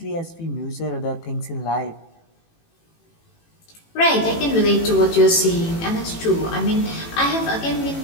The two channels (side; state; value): right; late; 18 ms